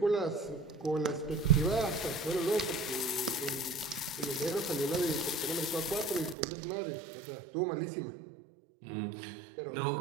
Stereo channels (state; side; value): drops out; left; at 6.4 s